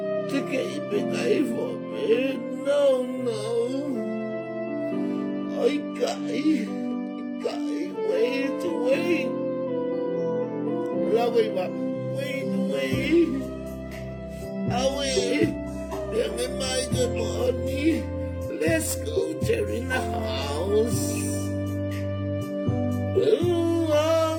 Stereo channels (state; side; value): identical; both; correlation 1.00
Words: teke ipe kai fo me, no, no. Oi kai, wait, wait. Lawe ba, wait. Awe, pia nge mai kai mohoni. Let's go, Jerry in the house. Ooh,